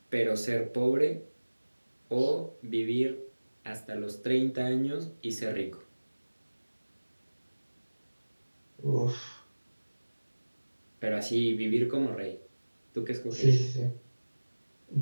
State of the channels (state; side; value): inverted; both; correlation -1.00